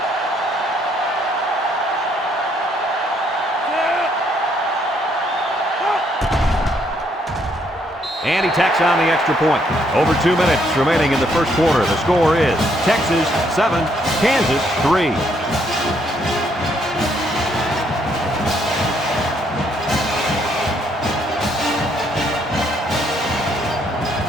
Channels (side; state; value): both; normal; correlation 0.70